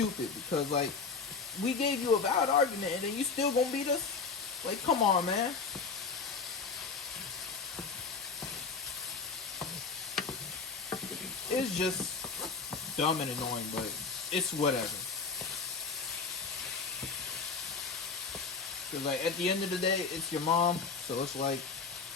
because like we gave you a valid argument and then you still gonna beat us. Like, come on, man. It's just dumb and annoying, but it's whatever. Cause like at the end of the day, it's your mom, so it's like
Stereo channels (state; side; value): quieter; right; 4.8 dB